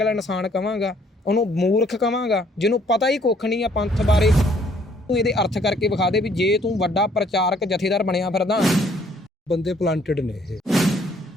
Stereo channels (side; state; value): both; normal; correlation 0.63